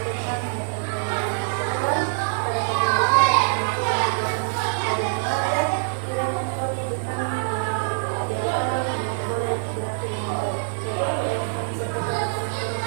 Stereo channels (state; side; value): silent; left; digital silence